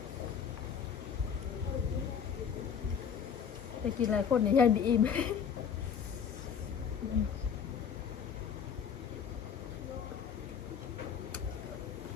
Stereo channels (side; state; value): right; quieter; 7.4 dB